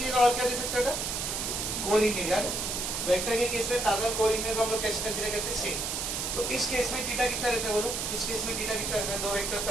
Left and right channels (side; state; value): right; noise; hiss, 2 dB below the sound